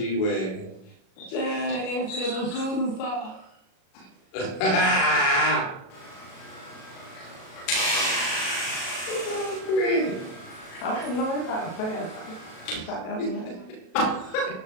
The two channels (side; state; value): right; late; 37 ms